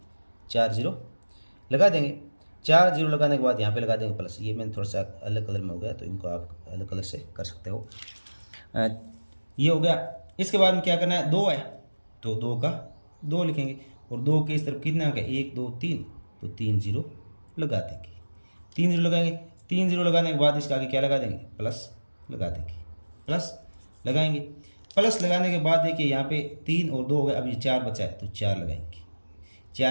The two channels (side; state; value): both; inverted; correlation -1.00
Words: 4 0 लगा देंगे। 4 0 लगाने के बाद यहाँ पे लगा देंगे प्लस। ये मैंने थोड़ा सा अलग कलर में हो गया तो इनको आप अलग कलर से कर सकते हो। ये हो गया। इसके बाद में क्या करना है, 2 है तो 2 का 2 लिखेंगे। और 2 के इस तरफ कितना अंक है, 1 2 3, तो 3 0 लगा देंगे। 3 0 लगाएंगे। 3 0 लगाने के बाद इसका आगे क्या लगा देंगे, प्लस लगा देंगे। प्लस लगाएंगे। प्लस लगाने के बाद देखिए यहाँ पे 3 और 2 हो गए, अब ये 4 बचा है तो 4 लगाएंगे।